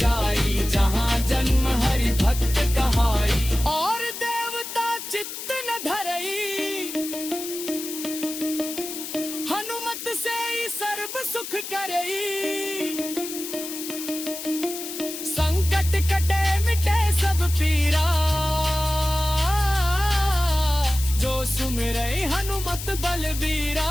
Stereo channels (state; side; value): noise; left; hiss, 8 dB below the sound